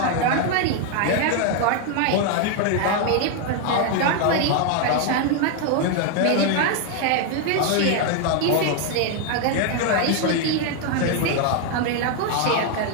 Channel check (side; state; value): both; different; correlation 0.01